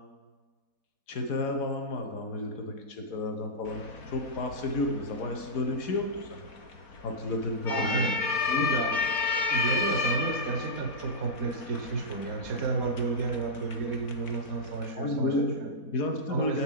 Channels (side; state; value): right; late; 4.1 ms